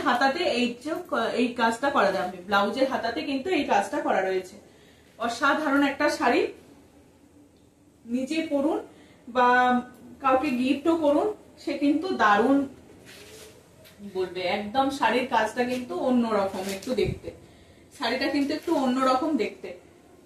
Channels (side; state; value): both; identical; correlation 1.00